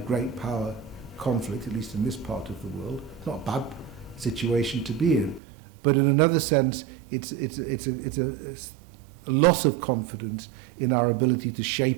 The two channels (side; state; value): left; drops out; at 5.4 s